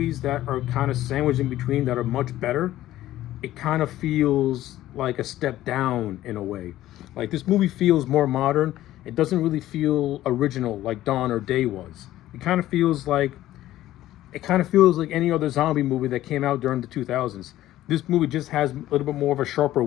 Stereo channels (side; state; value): right; quieter; 14.4 dB